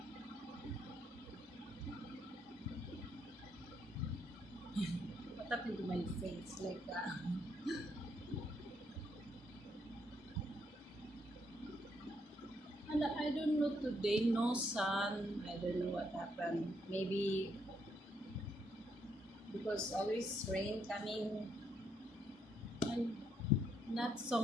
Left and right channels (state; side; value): normal; both; correlation 0.74